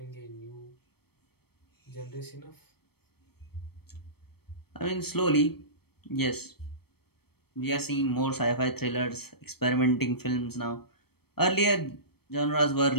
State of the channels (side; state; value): right; late; 0.96 ms